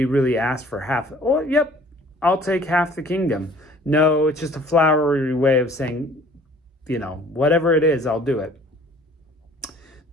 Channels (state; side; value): normal; both; correlation 0.53